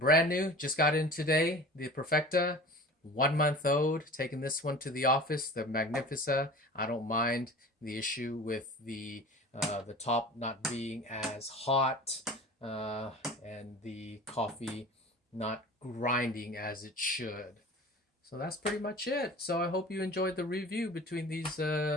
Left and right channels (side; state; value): both; normal; correlation 0.39